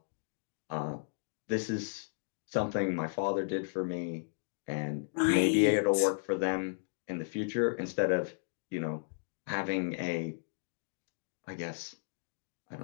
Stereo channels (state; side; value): silent; right; digital silence